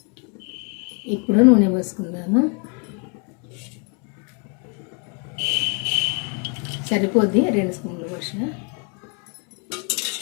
ఇప్పుడు నూనె పోసుకుందాము. సరిపోద్ది, 2 స్పూన్లు పోసిన.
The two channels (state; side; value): quieter; right; 35.0 dB